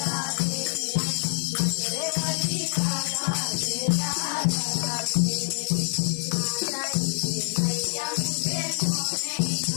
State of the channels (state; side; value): silent; right; 61 dB below the other